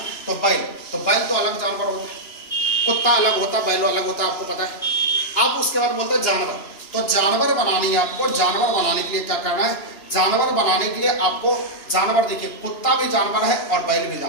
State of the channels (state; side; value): late; right; 2.9 ms